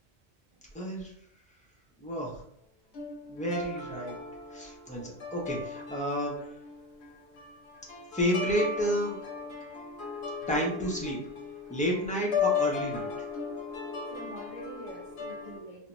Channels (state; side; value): normal; both; correlation 0.24